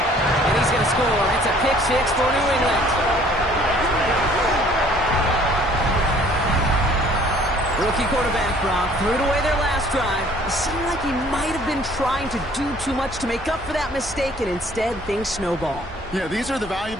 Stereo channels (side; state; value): both; normal; correlation 0.56